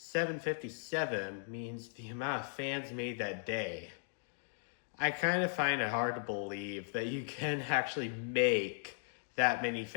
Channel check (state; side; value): silent; right; digital silence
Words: means the amount of fans made that day. I kind of find it hard to believe that you can actually make that many